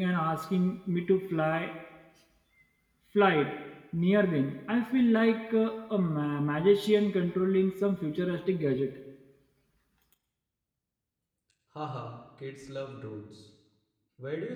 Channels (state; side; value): identical; both; correlation 1.00